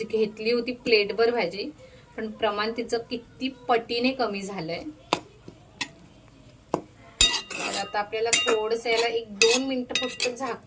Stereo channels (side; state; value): both; identical; correlation 1.00